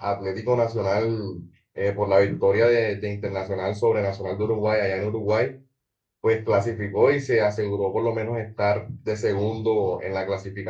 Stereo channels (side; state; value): both; identical; correlation 1.00